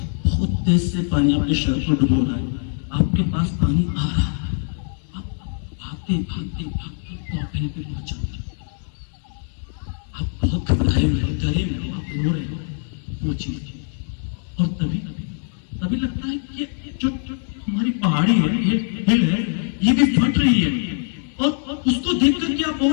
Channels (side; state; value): right; silent; 58 dB below the other